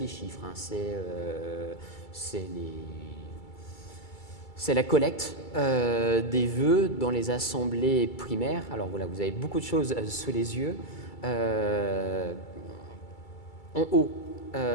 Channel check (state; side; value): late; right; 2.3 ms